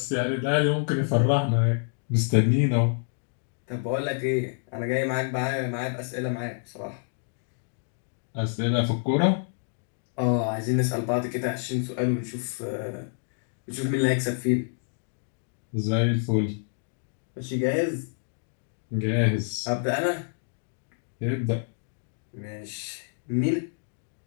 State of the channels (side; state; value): right; silent; digital silence